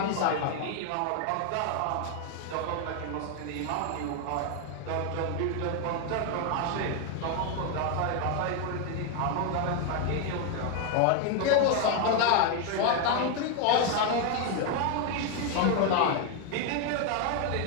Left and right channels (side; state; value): both; different; correlation 0.01